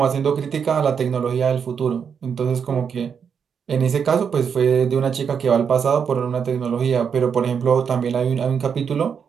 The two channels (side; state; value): left; quieter; 6.9 dB